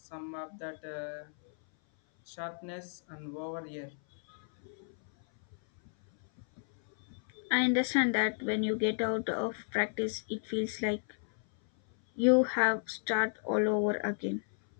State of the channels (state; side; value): silent; right; 56 dB below the other